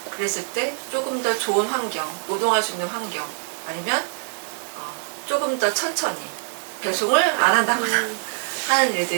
그랬을 때 조금 더 좋은 환경, 노동할 수 있는 환경 아니면 조금 더 천천히 배송을 안 한다거나 하는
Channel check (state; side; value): silent; left; digital silence